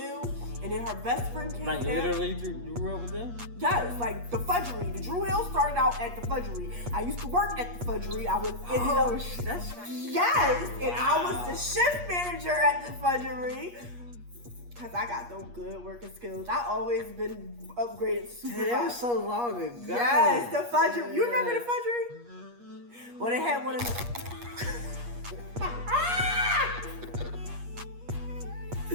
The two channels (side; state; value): left; late; 8.4 ms